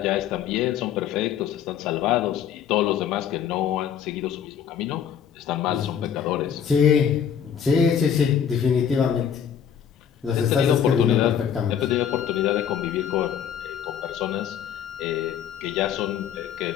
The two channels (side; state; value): right; quieter; 8.5 dB